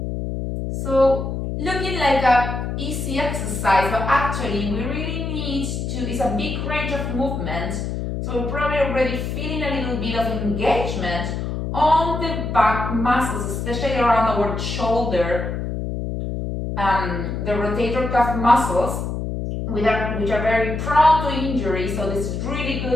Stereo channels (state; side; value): noise; left; hum, 3 dB below the sound